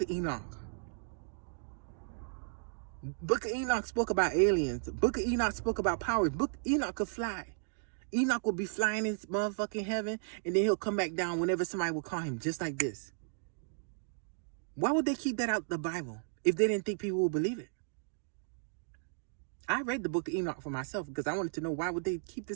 of Enoch? Book of Enoch spoke about aliens. Book of Enoch spoke about powers. Book of Enoch could fly. Enoch will be flying in motherfucking heaven, and then he'll come back down whenever somebody will call him, just like this. Why would they keep that out the Bible if they didn't think people would believe it? I read the Book of Enoch for myself because I wanted to know why would they keep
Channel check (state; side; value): silent; left; digital silence